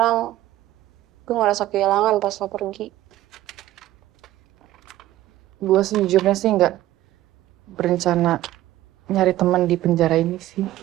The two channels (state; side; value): quieter; left; 14.8 dB